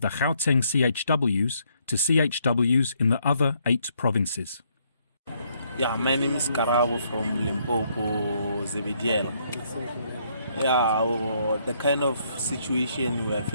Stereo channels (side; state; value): both; inverted; correlation -0.71